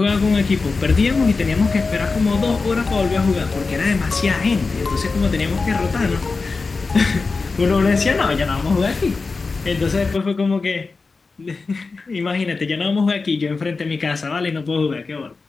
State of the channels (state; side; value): quieter; right; 4.2 dB